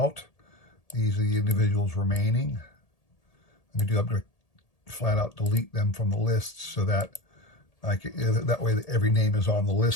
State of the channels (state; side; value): late; right; 1.8 ms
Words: These are the individuals remaining. I'm going to flat out delete them from the list so that that way every name is on the